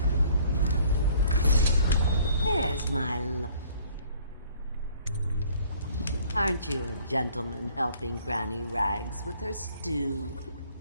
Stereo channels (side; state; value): both; inverted; correlation -0.57